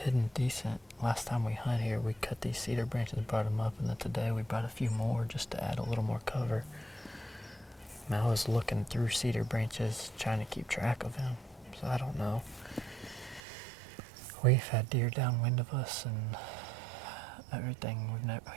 hidden decent. Last time we hunt here, we cut these cedar branches and brought them up, and then today we brought a few more just to add a little more cover. And I was looking through cedar branches trying to keep track of him, so I don't know. We've had deer downwind of us and everything. We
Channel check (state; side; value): drops out; left; at 13.4 s